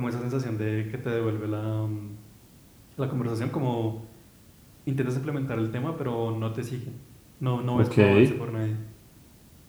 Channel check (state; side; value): identical; both; correlation 1.00